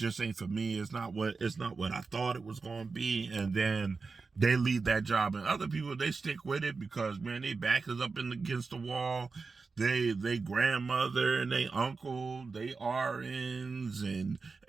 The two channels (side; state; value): left; quieter; 4.4 dB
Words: ain't for me. It's not what I thought it was going to be. And then they leave that job, and other people, they stick with it because, man, they back is up against the wall. They grandmother and they uncle, they RNs and